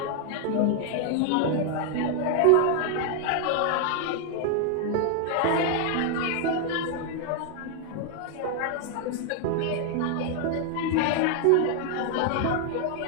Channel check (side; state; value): both; different; correlation 0.00